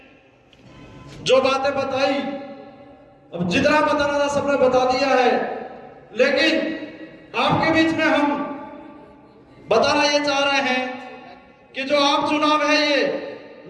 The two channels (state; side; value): identical; both; correlation 1.00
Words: जो बातें बताई, अब जितना बताना था सबने बता दिया है, लेकिन आपके बीच में हम बताना ये चाह रहे हैं कि जो आम चुनाव है, ये